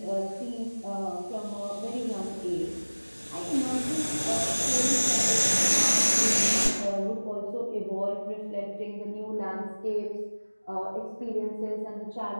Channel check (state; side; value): inverted; both; correlation -1.00